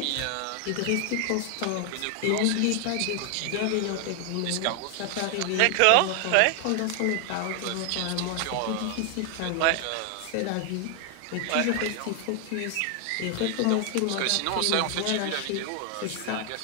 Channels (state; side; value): different; both; correlation 0.00